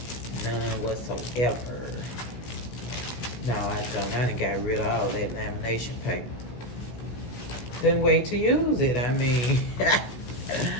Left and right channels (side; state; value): right; late; 16 ms